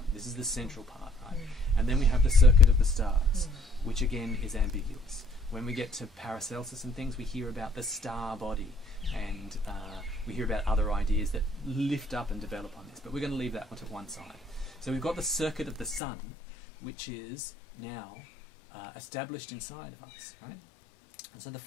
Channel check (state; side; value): drops out; right; at 16.0 s